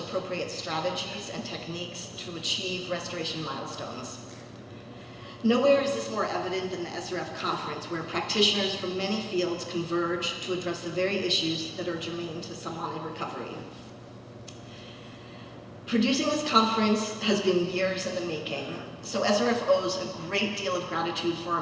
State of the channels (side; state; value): both; identical; correlation 1.00